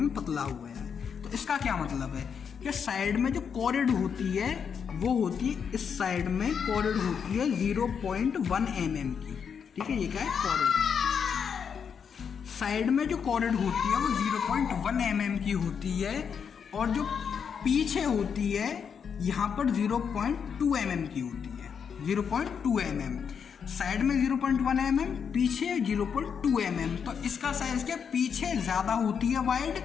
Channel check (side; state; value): right; quieter; 6.9 dB